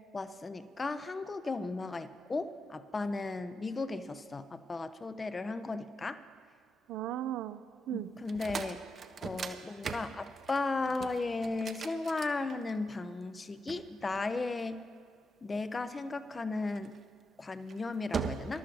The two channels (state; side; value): normal; both; correlation 0.86